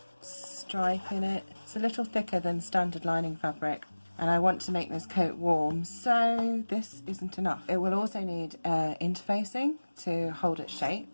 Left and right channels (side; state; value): both; inverted; correlation -1.00